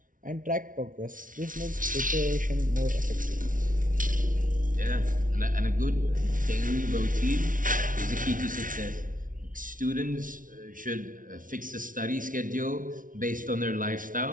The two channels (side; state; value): left; late; 0.39 ms